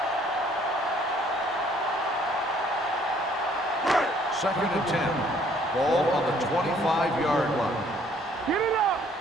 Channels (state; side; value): normal; both; correlation 0.61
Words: Second and 10. Ball on the 25-yard line. Get it up.